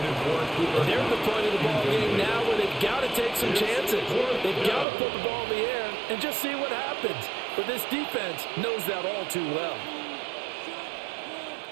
They're at the point of the ball game now where they've got to take some chances. They've got to put the ball in the air and just see what happens. But this defense knows that all too well.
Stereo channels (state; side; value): drops out; left; at 4.9 s